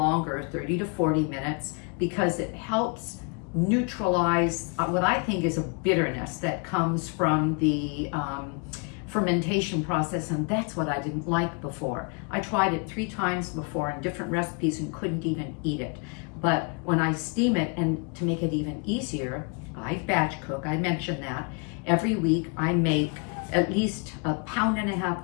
30 to 40 minutes, because it helps neutralize what I think is a bitterness that comes from the fermentation process, and that's what I didn't like before. I tried it 3 times before in different recipes and couldn't even eat it. But when I steam it, and to make it even easier, I batch cook, I mentioned that. Every week I make at least 1.5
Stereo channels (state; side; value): quieter; right; 35.8 dB